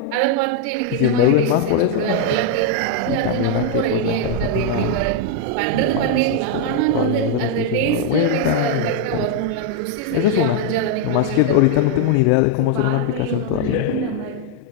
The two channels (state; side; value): different; both; correlation 0.00